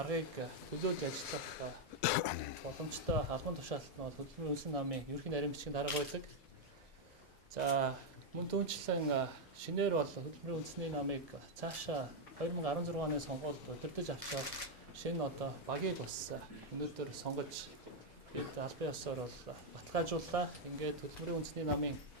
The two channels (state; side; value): normal; both; correlation 0.00